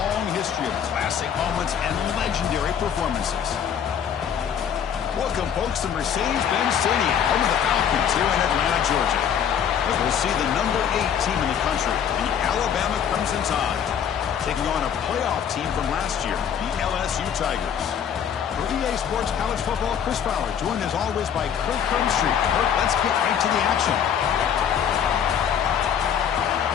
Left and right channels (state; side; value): quieter; right; 8.4 dB